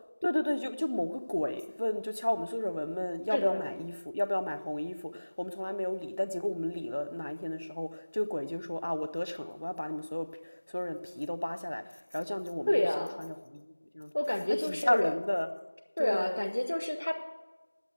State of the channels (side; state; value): both; inverted; correlation -1.00